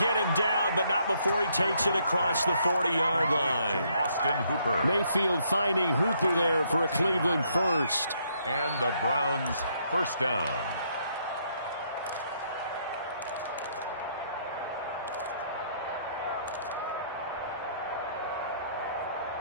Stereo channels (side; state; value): both; inverted; correlation -0.70